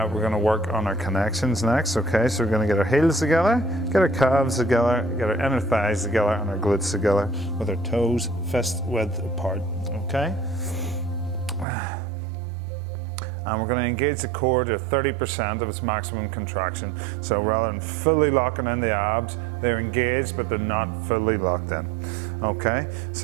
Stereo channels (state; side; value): drops out; left; at 11.7 s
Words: going to work on our connections next. Okay, so we're going to get our heels together, get our calves together, get our inner thighs together and our glutes together with our toes fist width apart. Okay? And we're going to engage the core to 30% of its maximum contraction. So rather than fully locking in the abs, they're engaged but they're not fully locked in. Okay,